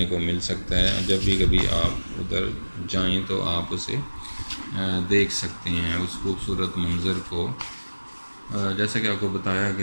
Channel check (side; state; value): both; inverted; correlation -1.00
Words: کو مل سکتا ہے۔ جب بھی کبھی آپ ادھر جائیں تو آپ اسے دیکھ سکتے ہیں، اس خوبصورت منظر کو۔ جیسا کہ آپ کو بتایا